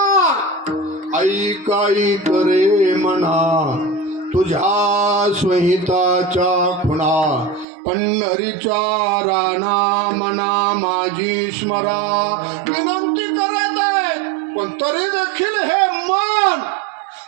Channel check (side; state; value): left; drops out; at 7.7 s